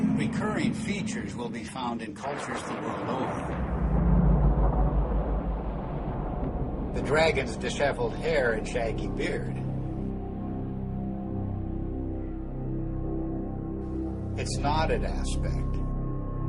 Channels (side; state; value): both; identical; correlation 1.00